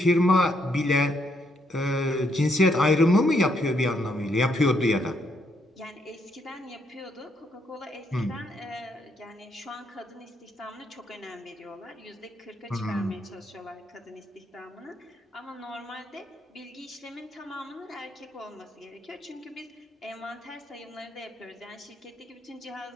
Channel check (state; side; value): normal; both; correlation 0.75